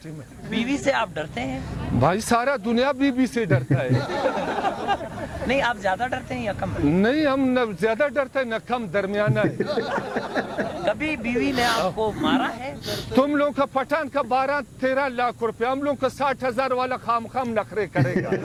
में। बीवी से आप डरते हैं? भाई सारा दुनिया बीवी से डरता है। नहीं, आप ज्यादा डरते हैं या कम? नहीं, हम न ज्यादा डरते हैं न कम, दरमियाना है। कभी बीवी ने आपको मारा है? तुम लोग का पठान का 12-13 लाख रुपए, हम लोग का 60,000 वाला खाम नखरे करेगा।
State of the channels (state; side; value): identical; both; correlation 1.00